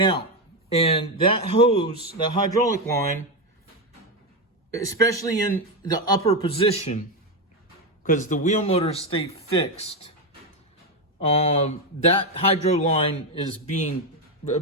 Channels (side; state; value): both; normal; correlation 0.09